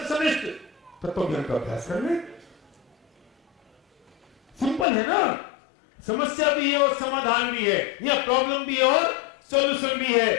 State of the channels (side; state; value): right; drops out; at 4.9 s